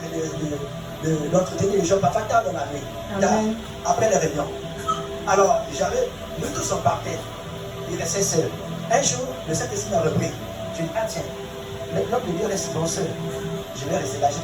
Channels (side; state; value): both; identical; correlation 1.00